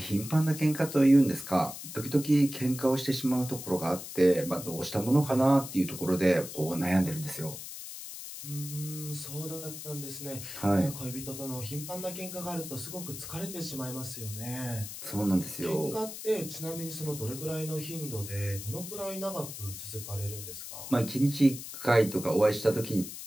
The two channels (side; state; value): left; noise; hiss, 10 dB below the sound